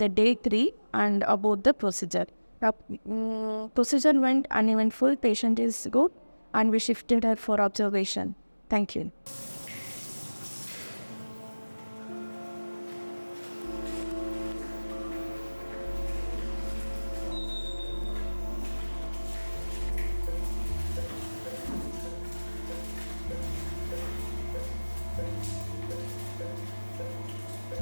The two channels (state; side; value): inverted; both; correlation -1.00